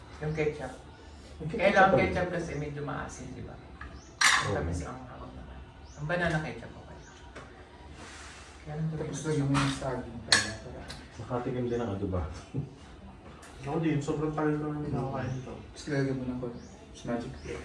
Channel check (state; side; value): identical; both; correlation 1.00